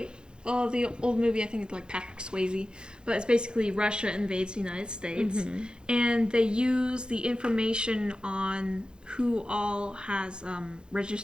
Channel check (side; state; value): left; late; 0.049 ms